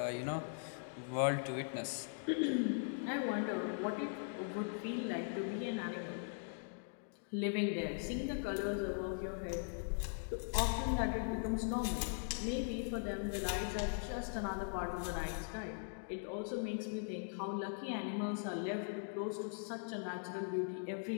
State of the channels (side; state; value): right; silent; digital silence